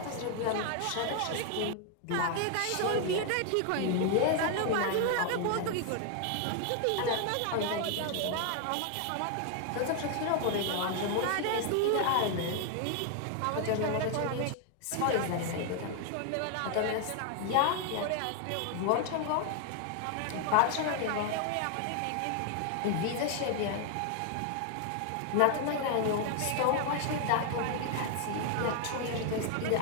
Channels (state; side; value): different; both; correlation 0.00